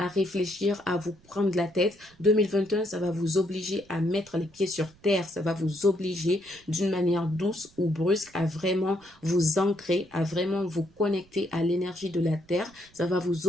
réfléchir, à vous prendre la tête. 2021, ça va vous obliger à mettre les pieds sur terre. Ça va vous obliger d'une manière douce ou brusque à vraiment vous ancrer, à vraiment vous connecter à l'énergie de la terre. Ça va vous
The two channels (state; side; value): noise; right; rumble, 29 dB below the sound